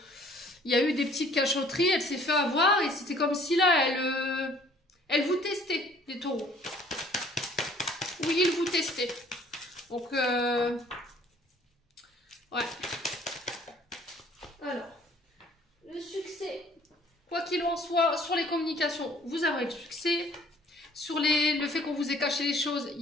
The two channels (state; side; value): normal; both; correlation 0.56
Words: il y a eu des petites cachotteries. Elle s'est fait avoir. Et c'était comme si là, elle vous testait, les taureaux. Oui, il vous testait. Donc, ouais. Alors, le succès... Quoi qu'il en soit, sur les communications, vous aurez le succès. Sur le fait qu'on vous ait caché les choses, il